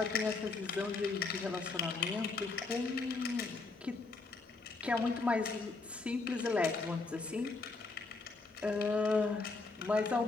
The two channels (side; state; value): right; quieter; 3.8 dB